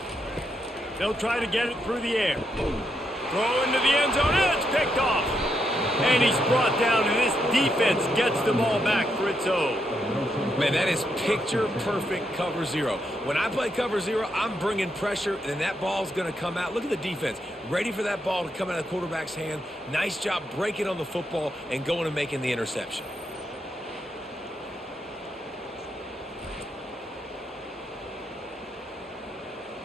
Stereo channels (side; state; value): both; normal; correlation 0.80